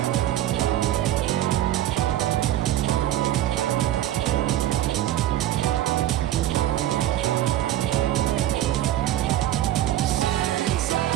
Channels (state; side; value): quieter; left; 13.1 dB